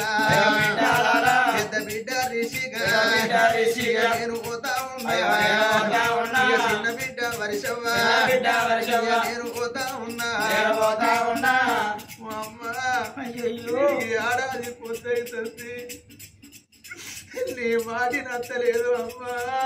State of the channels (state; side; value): identical; both; correlation 1.00